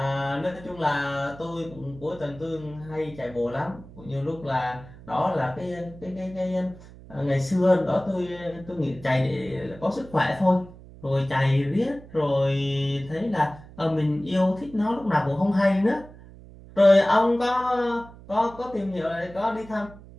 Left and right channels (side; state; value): right; noise; hum, 19 dB below the sound